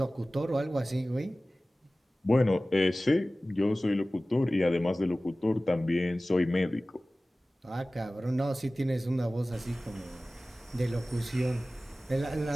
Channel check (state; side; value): normal; both; correlation 0.97